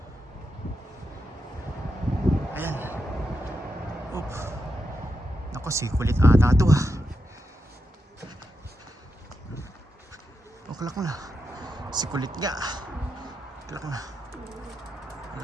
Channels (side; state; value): both; normal; correlation 0.86